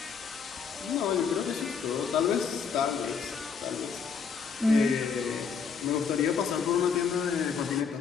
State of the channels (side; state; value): right; quieter; 6.1 dB